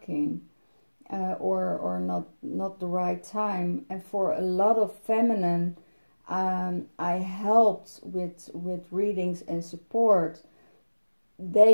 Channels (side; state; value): both; inverted; correlation -1.00